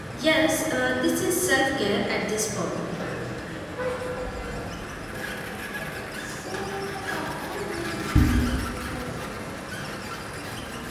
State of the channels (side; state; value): both; identical; correlation 1.00